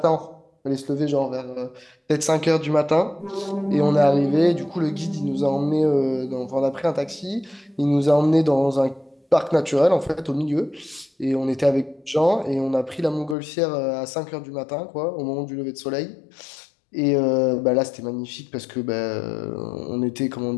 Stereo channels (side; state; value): right; drops out; at 13.4 s